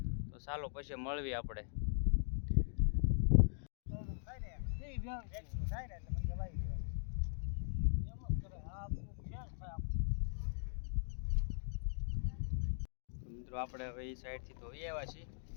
તો ચાલો પછી મળવી આપણે. મિત્રો આપણે હવે એ સાઈડથી તો આવ્યા છીએ.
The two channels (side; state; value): right; silent; digital silence